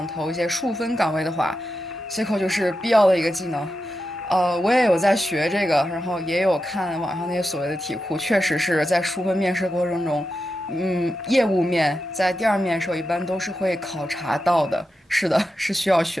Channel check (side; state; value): both; normal; correlation 0.89